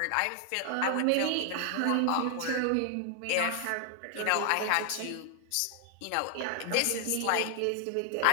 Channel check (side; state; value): both; different; correlation 0.00